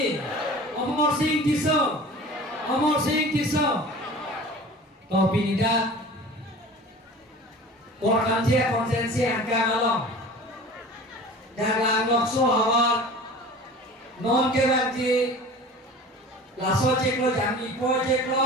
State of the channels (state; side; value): normal; both; correlation 0.40